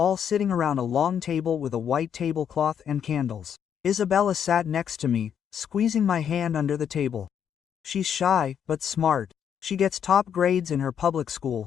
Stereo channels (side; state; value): right; quieter; 8.4 dB